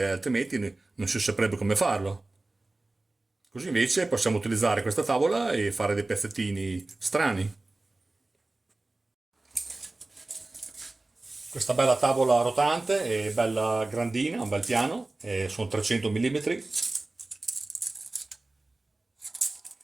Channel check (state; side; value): quieter; left; 3.0 dB